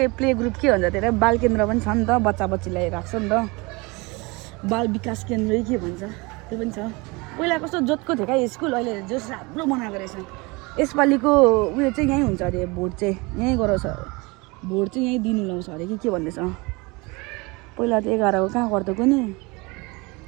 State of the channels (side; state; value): left; quieter; 26.0 dB